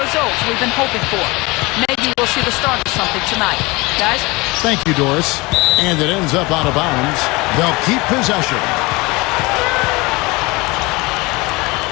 we've been hoping for. Maybe we'll see the start of something tonight. Guys? Thank you, Doris. And it ends up out of bounds. They'll keep possession.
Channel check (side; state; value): right; quieter; 23.8 dB